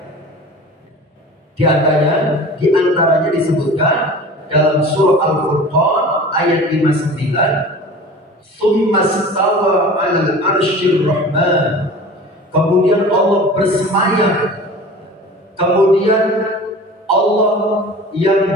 Di antaranya disebutkan dalam surah Al-Furqan ayat 59, "Tsumma stawa 'alal 'arsyir rahman." Kemudian Allah bersemayam. Kemudian Allah yang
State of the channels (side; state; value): both; normal; correlation 0.39